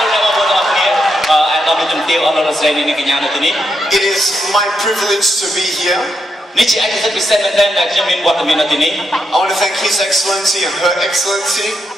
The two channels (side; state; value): both; normal; correlation 0.82